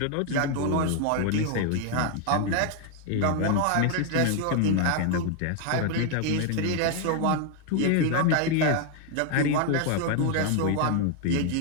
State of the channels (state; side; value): different; both; correlation 0.00